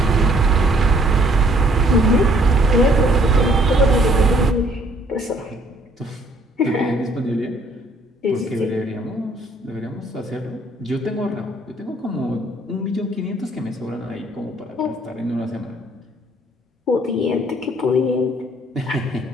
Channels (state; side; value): normal; both; correlation 0.62